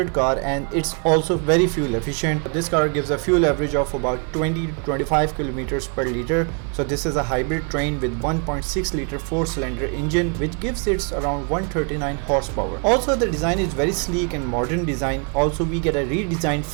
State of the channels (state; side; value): quieter; left; 38.0 dB